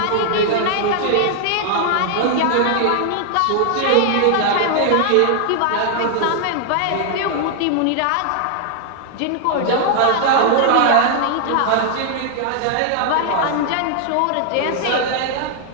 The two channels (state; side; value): different; both; correlation 0.00